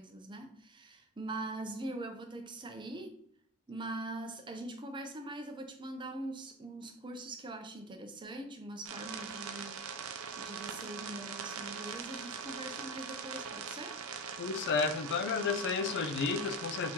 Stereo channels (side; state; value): both; normal; correlation 0.20